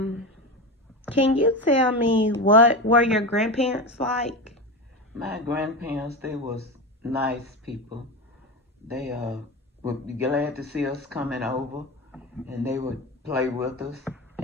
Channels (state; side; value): normal; both; correlation 0.21